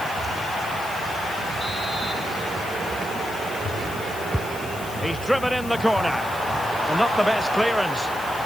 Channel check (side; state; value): left; noise; hiss, 15 dB below the sound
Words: He's driven in the corner. And not the best clearance.